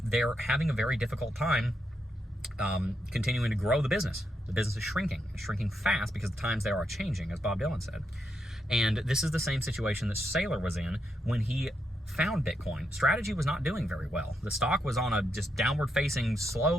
They're having a very difficult time continuing to grow the business. The business is shrinking fast because the times there are changing, as Bob Dylan said. And this is the same situation that Saylor was in when he found Bitcoin. Strategy was not doing very well. The stock was on a just downward-facing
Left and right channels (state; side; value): normal; both; correlation 0.82